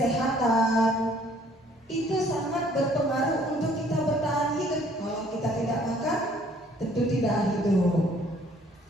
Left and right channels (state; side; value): normal; both; correlation 0.60